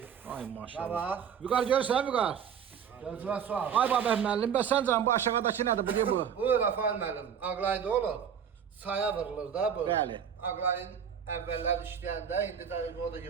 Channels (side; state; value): left; quieter; 7.9 dB